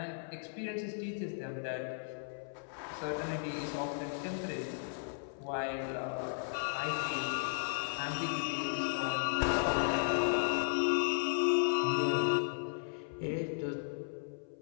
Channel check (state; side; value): silent; right; 54 dB below the other